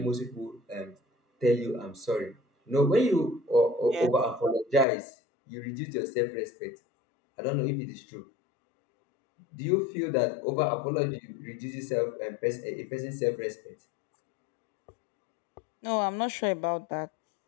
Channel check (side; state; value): right; drops out; at 4.9 s